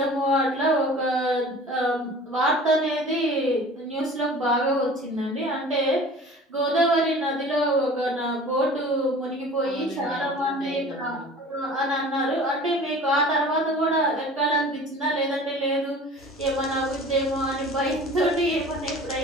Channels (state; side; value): normal; both; correlation 0.43